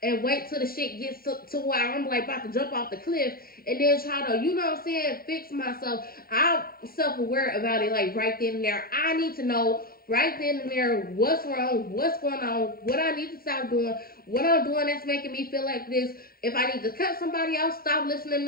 and wait till the shit gets to where I'm like about to jump off the cliff and then try to, you know what I'm saying, fix myself. I'm self-aware about it like right then and there. I need to know right then and there what's wrong, what's going on, what I need to stop doing, what I'm doing that's making me feel like this. If I need to cut somebody else, stop listening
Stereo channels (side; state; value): right; late; 0.43 ms